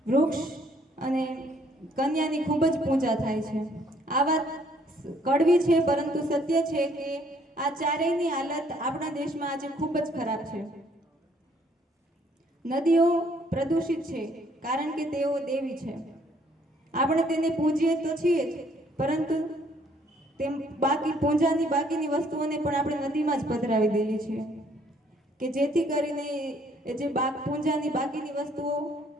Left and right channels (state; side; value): normal; both; correlation 0.64